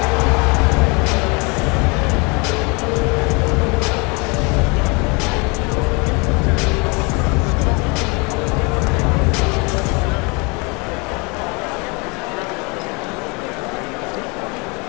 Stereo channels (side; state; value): right; quieter; 29.8 dB